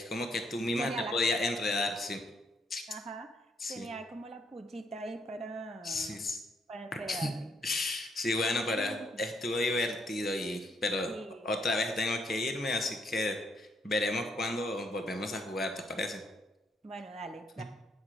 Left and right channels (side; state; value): both; normal; correlation 0.72